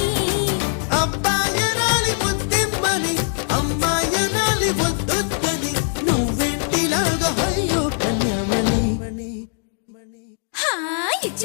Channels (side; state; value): right; silent; 65 dB below the other